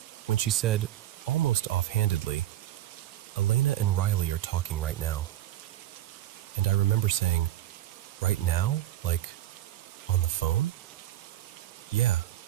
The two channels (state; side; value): quieter; left; 13.3 dB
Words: when she said, almost offhandedly, Elena and Riley are talking right now. And I remember saying, right now? Like, on the phone? Yeah,